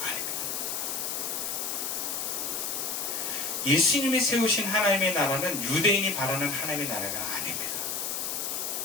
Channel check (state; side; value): noise; left; hiss, 2 dB below the sound